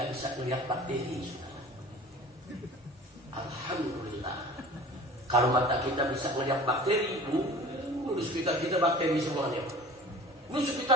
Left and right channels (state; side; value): normal; both; correlation 0.43